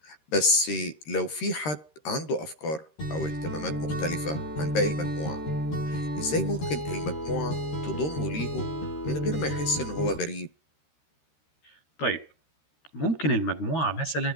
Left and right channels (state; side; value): late; right; 13 ms